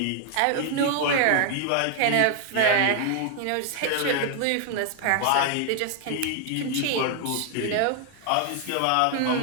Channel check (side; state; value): both; different; correlation 0.00